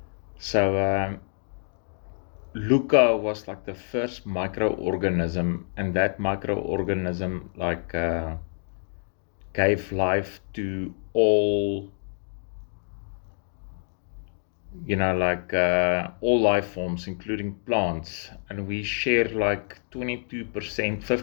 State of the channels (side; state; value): right; silent; digital silence